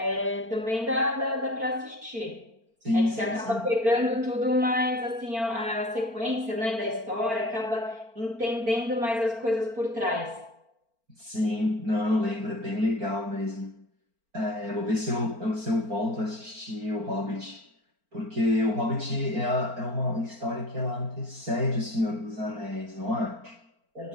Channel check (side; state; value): left; late; 4.4 ms